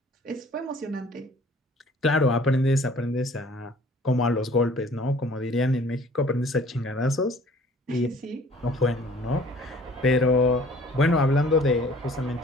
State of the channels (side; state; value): both; normal; correlation 0.53